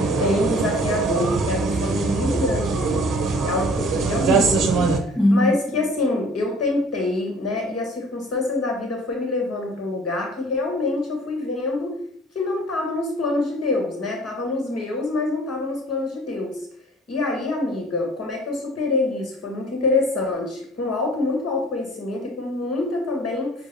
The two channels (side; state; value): both; normal; correlation 0.50